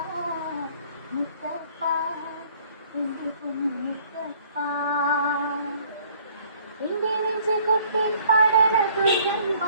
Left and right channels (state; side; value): inverted; both; correlation -0.58